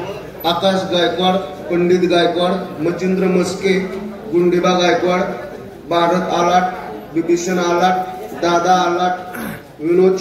आकाश गायकवाड, पंडित गायकवाड, मचिंद्र मस्के, गुंडेबा गायकवाड, भारत आलाट, विभीषण आलाट, दादा आलाट, विनोद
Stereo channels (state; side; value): identical; both; correlation 1.00